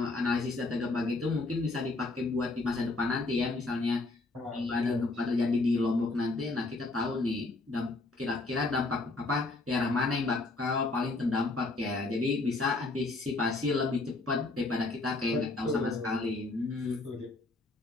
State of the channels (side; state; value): right; quieter; 3.2 dB